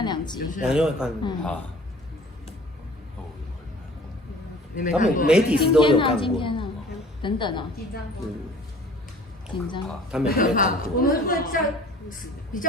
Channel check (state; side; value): normal; both; correlation 0.47